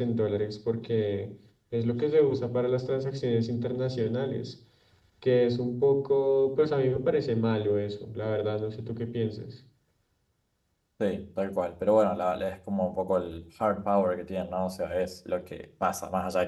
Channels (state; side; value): identical; both; correlation 1.00